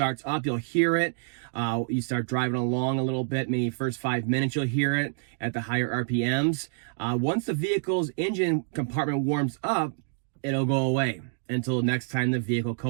up, you'll hear it. You start driving along a little bit, maybe first 5 minutes you'll hear it at the higher RPMs. Once the vehicle's engine compartment warms up, it'll go away until next time the vehicle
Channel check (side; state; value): left; silent; digital silence